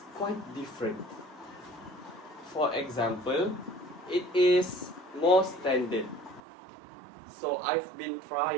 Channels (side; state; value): left; drops out; at 6.4 s